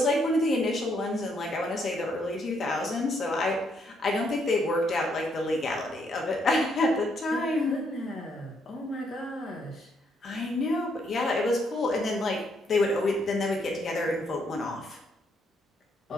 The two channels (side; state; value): both; normal; correlation 0.73